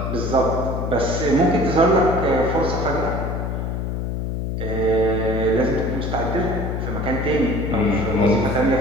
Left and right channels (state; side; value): noise; left; hum, 2 dB below the sound